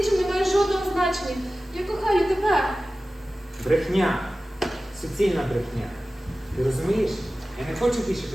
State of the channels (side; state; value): both; normal; correlation 0.96